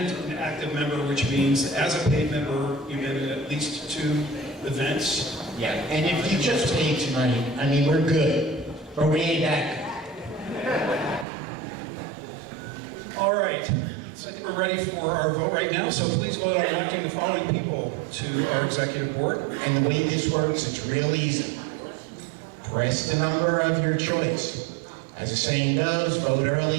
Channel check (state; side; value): drops out; left; at 11.2 s